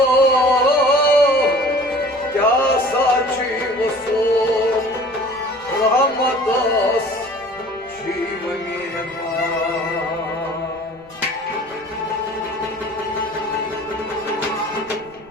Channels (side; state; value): right; noise; rumble, 28 dB below the sound